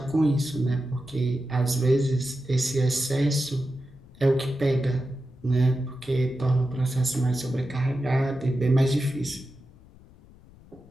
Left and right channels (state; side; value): noise; left; rumble, 24 dB below the sound